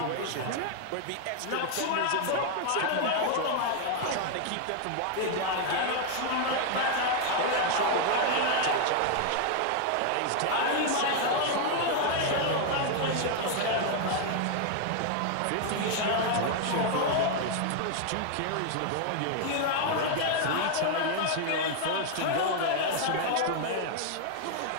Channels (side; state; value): both; different; correlation 0.00